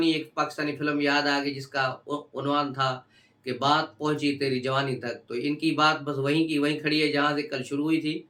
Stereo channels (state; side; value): identical; both; correlation 1.00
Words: एक पाकिस्तानी फ़िल्म याद आ गई, जिसका उन्वान था कि बात पहुँची तेरी जवानी तक। तो इनकी बात बस वहीं की वहीं खड़ी है जहाँ से कल शुरू हुई थी,